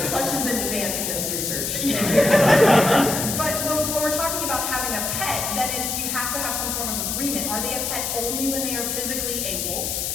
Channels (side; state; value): left; noise; hiss, 2 dB below the sound